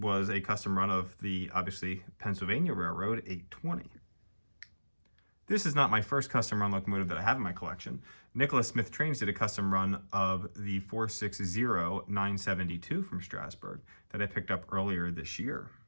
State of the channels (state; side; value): inverted; both; correlation -1.00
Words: a custom run of the, obviously, Pennsylvania Railroad 820. This is not my first custom run locomotive that I have in my collection. Nicholas Smith Trains did a custom run of the 460-972 from Strasburg that I picked up earlier this year.